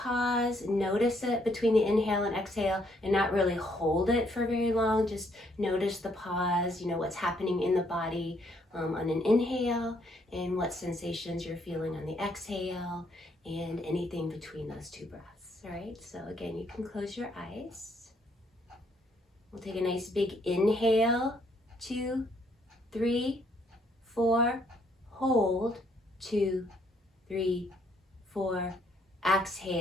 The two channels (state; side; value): normal; both; correlation 0.70